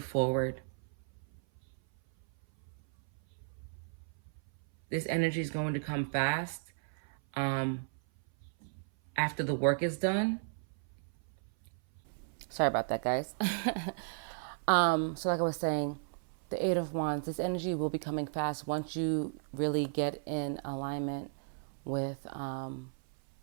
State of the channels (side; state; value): left; silent; 55 dB below the other